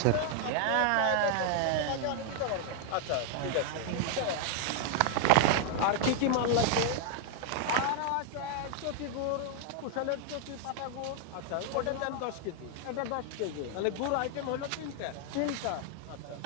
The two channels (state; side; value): different; both; correlation 0.00